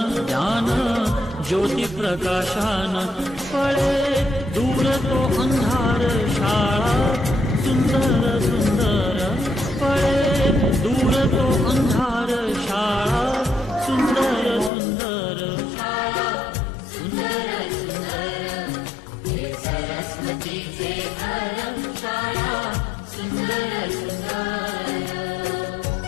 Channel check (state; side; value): drops out; right; at 14.7 s